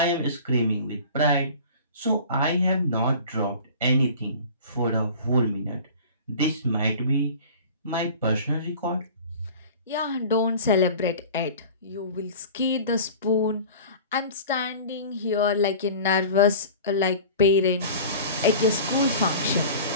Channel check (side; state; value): both; inverted; correlation -0.40